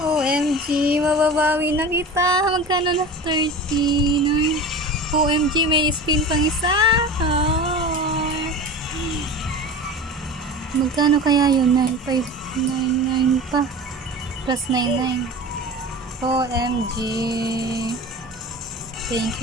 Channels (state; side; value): normal; both; correlation 0.34